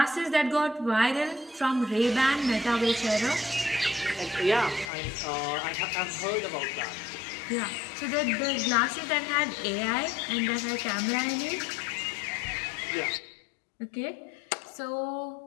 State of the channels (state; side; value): drops out; right; at 4.9 s